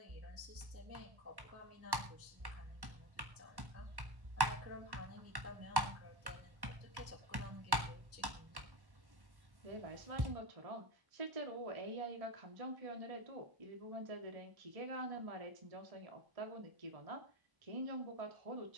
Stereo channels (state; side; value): late; left; 1.1 ms